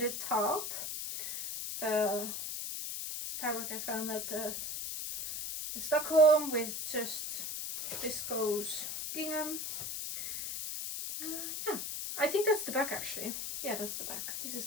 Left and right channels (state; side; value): noise; left; hiss, 4 dB below the sound